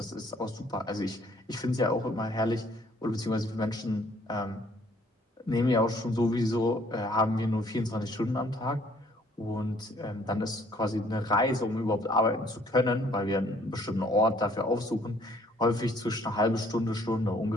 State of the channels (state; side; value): normal; both; correlation 0.61